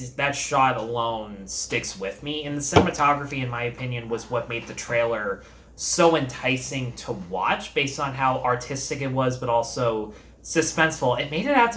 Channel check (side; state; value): both; identical; correlation 1.00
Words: shot alone sticks with me. And the cinematography, in my opinion, was what made the trailer so enticing to watch based on how artistic it was, but also suspenseful. It made it out